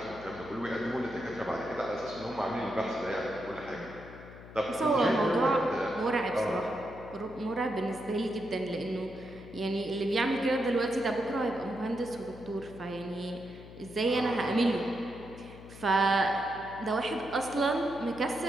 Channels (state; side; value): noise; left; hum, 16 dB below the sound